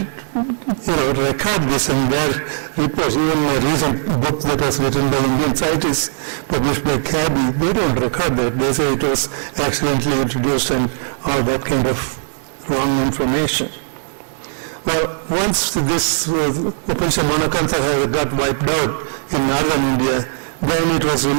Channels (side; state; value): left; silent; digital silence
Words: record this in their reports. Even a recent book that was written by Indian scientists, published by Cabby, they don't record that. They say it was accidentally introduced and all that kind of wrong information. Well, once this Opuntia monacantha got wiped out in northern India, then it was